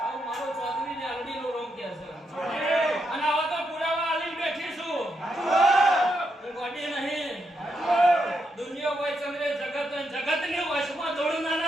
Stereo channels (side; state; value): both; normal; correlation 0.81